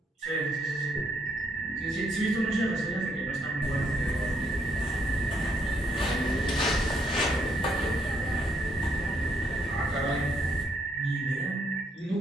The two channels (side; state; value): both; normal; correlation 0.72